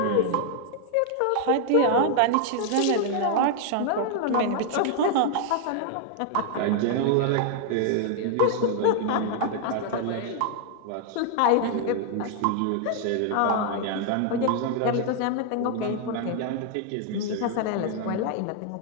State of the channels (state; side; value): different; both; correlation 0.00